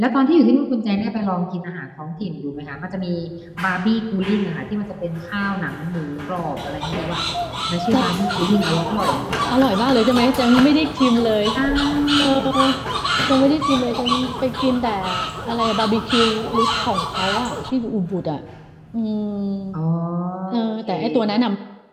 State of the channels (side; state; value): both; identical; correlation 1.00